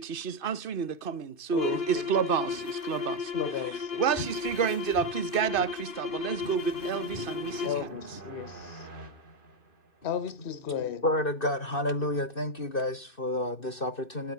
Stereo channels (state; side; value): late; right; 2.5 ms